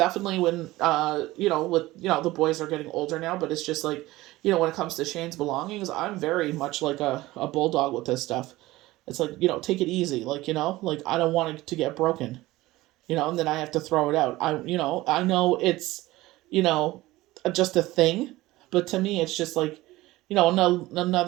when, the boys are getting older now, but it's just like, when it comes to Shane's belongings, I'm very much like a bulldog with this stuff. It's like, take it easy. Like, like I don't want it to get broken, and then I have to throw it out. I know it's, you know, just a thing, but to me, it's just like,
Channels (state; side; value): quieter; left; 18.3 dB